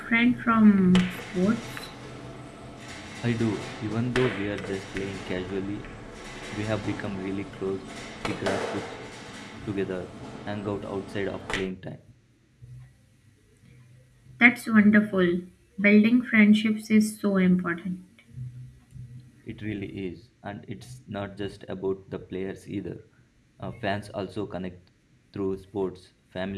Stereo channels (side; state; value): both; identical; correlation 1.00